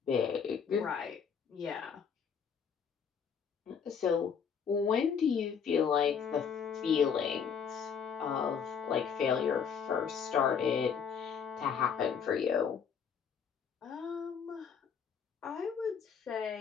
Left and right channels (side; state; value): right; quieter; 6.9 dB